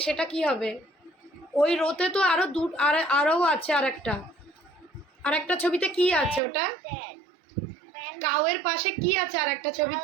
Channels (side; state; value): left; drops out; at 6.4 s